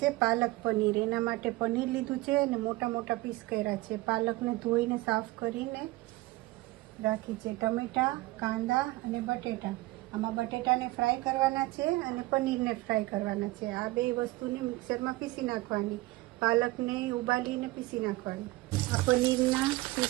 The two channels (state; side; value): quieter; left; 19.9 dB